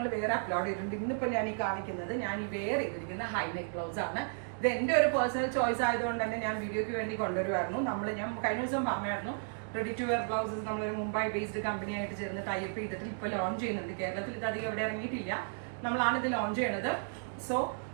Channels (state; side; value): silent; left; digital silence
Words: വേറെ അപ്ലോഡ് ചെയ്തിട്ടുണ്ട്. ഇന്നിപ്പോൾ ഞാൻ ഈ കാണിക്കുന്നത് ഞാൻ ഈ വെയർ ചെയ്തിരിക്കുന്ന ഹൈ നെക്ക് ബ്ലൗസ് ആണ്. ഇത് എൻ്റെ ഒരു പേഴ്സണൽ ചോയ്സ് ആയതുകൊണ്ട് തന്നെ ഞാൻ വീഡിയോയ്ക്ക് വേണ്ടി കൊണ്ടുവരുമായിരുന്നു. ഞാൻ കഴിഞ്ഞ ദിവസം പറഞ്ഞായിരുന്നു റെഡി ടു വെയർ ബ്ലൗസസ് നമ്മളൊരു മുംബൈ ബേസ്ഡ് കമ്പനി ആയിട്ട് ചേർന്ന് ടൈപ്പ് ചെയ്തിട്ട് ഇപ്പോൾ ലോഞ്ച് ചെയ്യുന്നുണ്ട്. കേരളത്തിൽ ഇത് അധികം എവിടെ ഇറങ്ങിയിട്ടില്ല. നമ്മളാണ് ഇത് ലോഞ്ച് ചെയ്യണത്. സോ